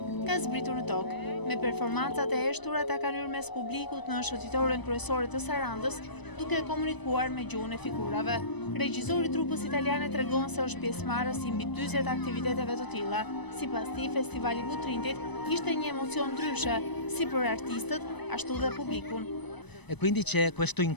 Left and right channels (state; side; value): late; right; 1.0 ms